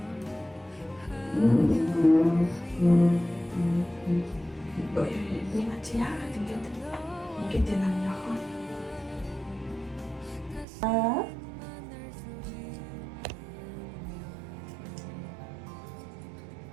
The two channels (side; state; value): left; drops out; at 10.7 s